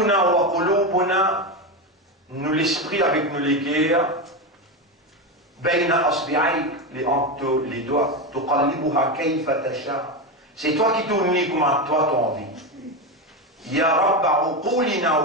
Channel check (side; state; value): both; normal; correlation 0.14